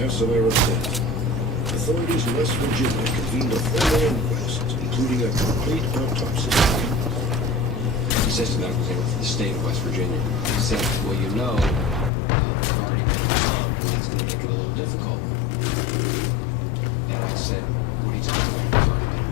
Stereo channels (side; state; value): right; drops out; at 12.1 s